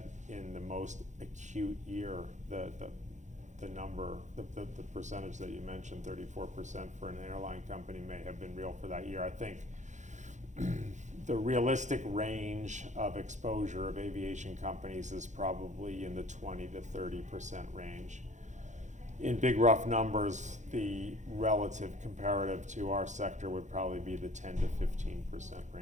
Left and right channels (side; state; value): left; late; 0.35 ms